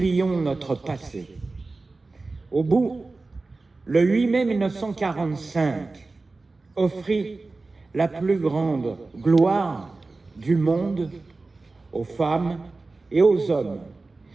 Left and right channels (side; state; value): left; quieter; 3.5 dB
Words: notre passé. Au bout le 8 mai 1945 offrit la plus grande gloire du monde aux femmes et aux hommes